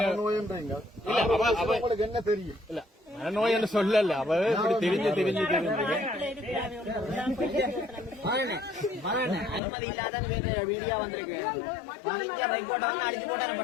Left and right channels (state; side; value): drops out; right; at 9.6 s